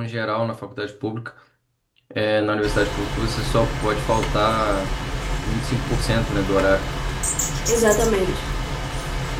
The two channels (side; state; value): both; identical; correlation 1.00